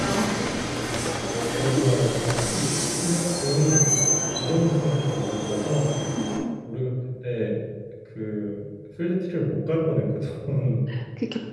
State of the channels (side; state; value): both; identical; correlation 1.00